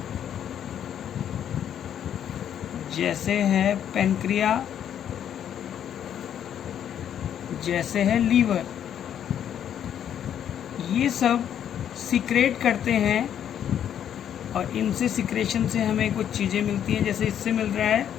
जैसे है पेनक्रिया, जैसे है लीवर। ये सब सीक्रेट करते हैं और इनसे सिक्रेशन से हमें कुछ चीज़ें मिलती हैं। जैसे इससे मिल रहा है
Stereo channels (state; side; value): quieter; right; 9.6 dB